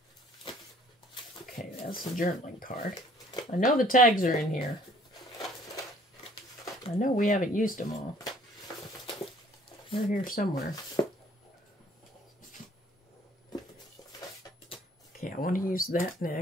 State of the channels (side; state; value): both; normal; correlation 0.58